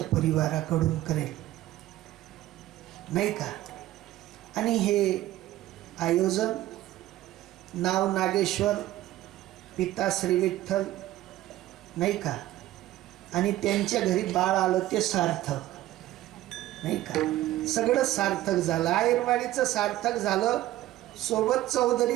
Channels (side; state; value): left; quieter; 15.1 dB